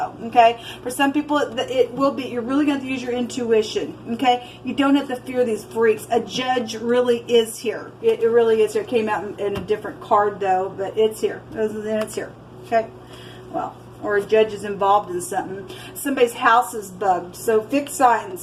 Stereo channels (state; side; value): identical; both; correlation 1.00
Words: Okay? For some people, it will be. You're really going to have to use your intuition. Okay? You don't have to fear these freaks. A judge really is here. It really is here. It came out in a different card, though, but it's here. And it's here. Okay? Well, or a judge is involved in something. Somebody's house is bugged. So fixed